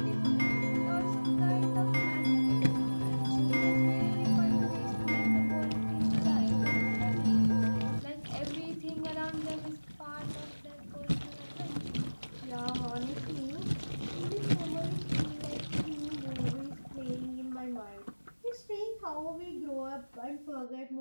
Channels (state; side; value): inverted; both; correlation -1.00